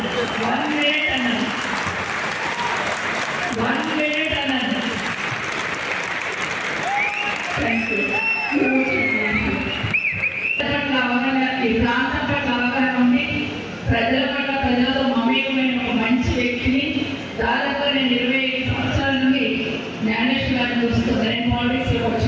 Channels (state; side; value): identical; both; correlation 1.00